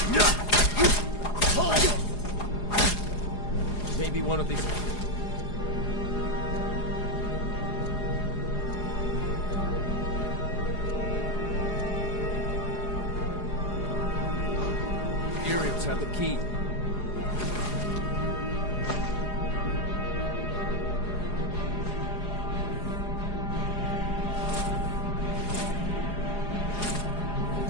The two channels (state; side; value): late; right; 4.8 ms